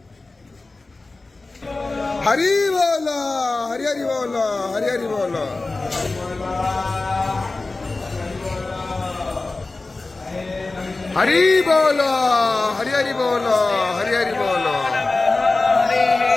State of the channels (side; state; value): right; quieter; 3.4 dB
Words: হরি বল, হরি হরি বল, হরি হরি বল। হরি বল, হরি হরি বল, হরি হরি বল।